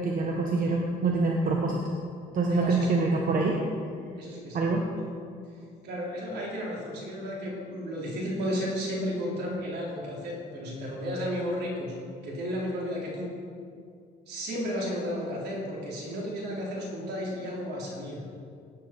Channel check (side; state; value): both; normal; correlation 0.55